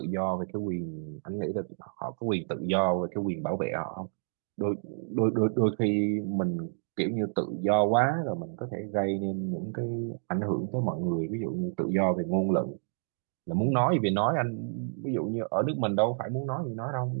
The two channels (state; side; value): silent; left; digital silence